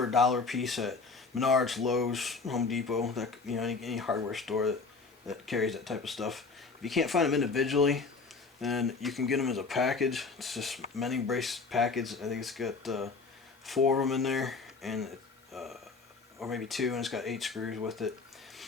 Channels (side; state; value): right; quieter; 4.4 dB